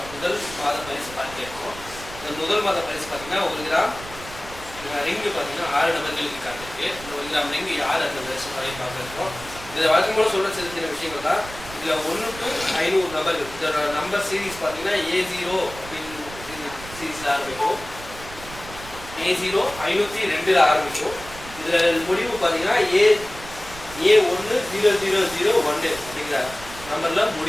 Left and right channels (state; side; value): noise; right; rumble, 15 dB below the sound